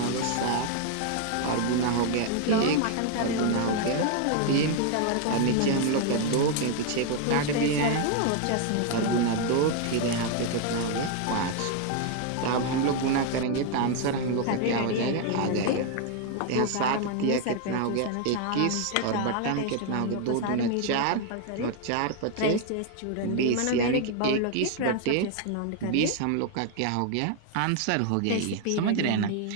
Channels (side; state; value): both; different; correlation 0.00